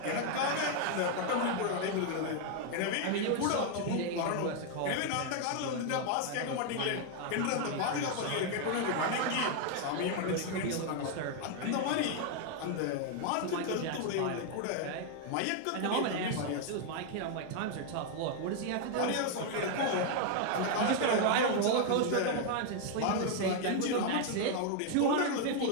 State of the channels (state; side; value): different; both; correlation 0.00